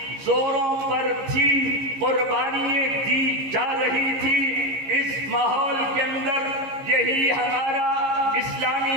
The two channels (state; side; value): late; left; 15 ms